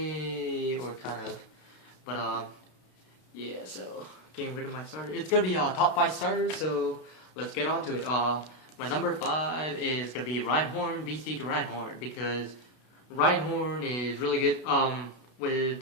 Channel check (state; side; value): late; right; 32 ms